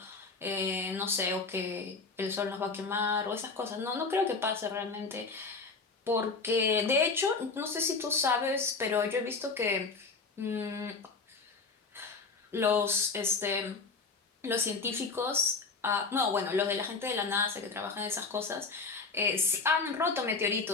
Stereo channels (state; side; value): quieter; right; 4.3 dB